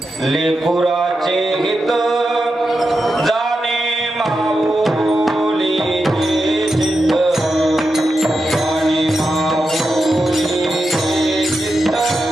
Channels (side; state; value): both; normal; correlation 0.88